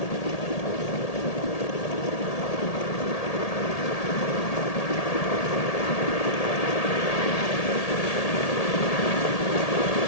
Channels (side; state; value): right; late; 1.8 ms